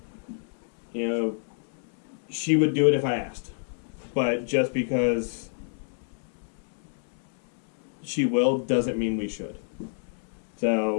she would do it if I asked. But just because she will doesn't mean we should.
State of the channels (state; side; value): silent; right; digital silence